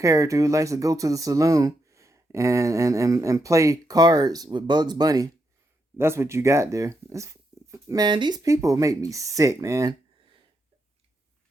who likes to go to the saloon and play cards with Bugs Bunny. That's what you got there. Man, these people make me sick, man.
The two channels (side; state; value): both; normal; correlation 0.82